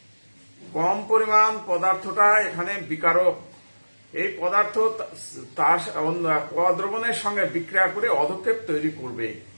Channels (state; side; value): inverted; both; correlation -1.00